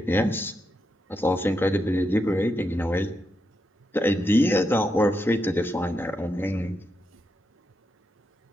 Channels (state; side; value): normal; both; correlation 0.83